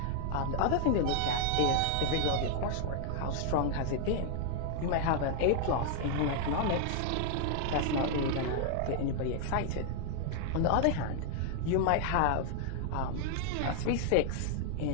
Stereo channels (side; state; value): both; different; correlation 0.00